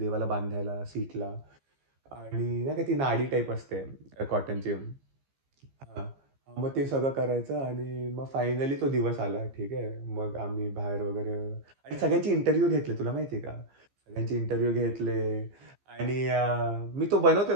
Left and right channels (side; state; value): left; late; 15 ms